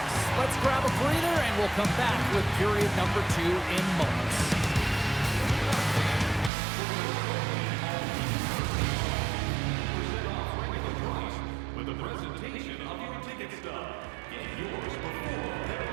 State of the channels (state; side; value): drops out; left; at 6.5 s